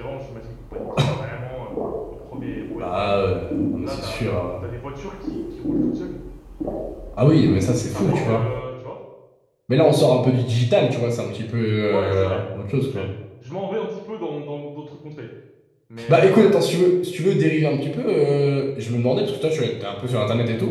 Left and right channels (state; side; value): identical; both; correlation 1.00